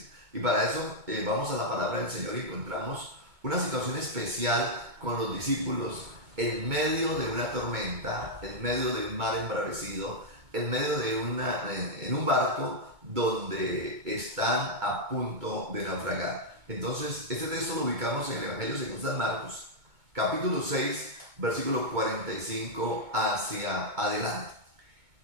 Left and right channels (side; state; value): left; late; 2.2 ms